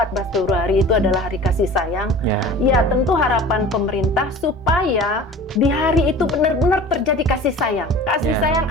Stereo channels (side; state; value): both; normal; correlation 0.41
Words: Februari itu adalah hari kasih sayang. Ya, tentu harapan pemerintah supaya di hari itu benar-benar terjadi kasih sayang. Kasih sayang